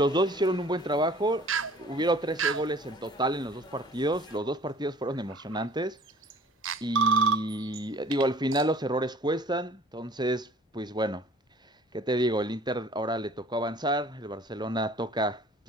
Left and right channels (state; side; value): normal; both; correlation 0.50